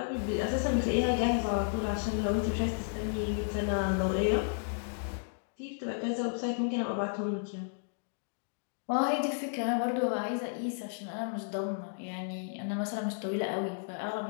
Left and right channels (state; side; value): silent; right; digital silence